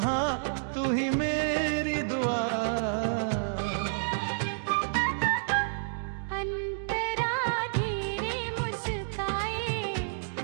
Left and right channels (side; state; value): left; silent; digital silence